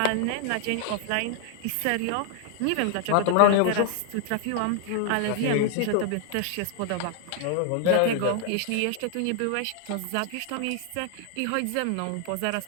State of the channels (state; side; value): different; both; correlation 0.00